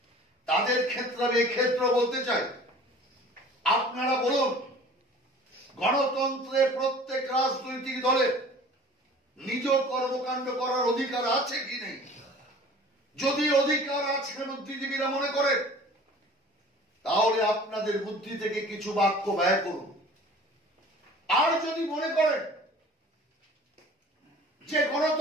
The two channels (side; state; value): both; normal; correlation 0.46